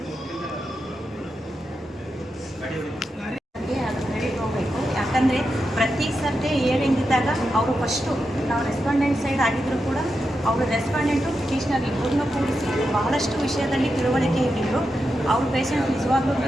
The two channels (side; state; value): both; normal; correlation 0.87